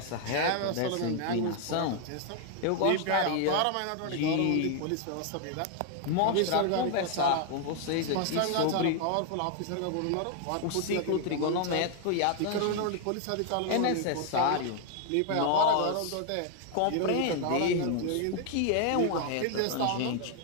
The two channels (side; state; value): both; different; correlation 0.00